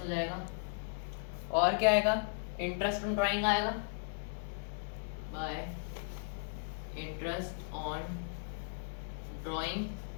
जाएगा। और क्या आएगा, इंटरेस्ट ऑन ड्राइंग आएगा बाय इंटरेस्ट ऑन ड्राइंग,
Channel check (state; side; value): silent; right; digital silence